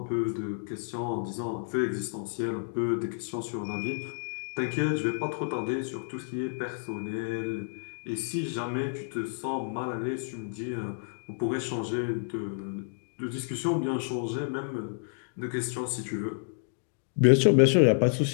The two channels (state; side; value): silent; right; digital silence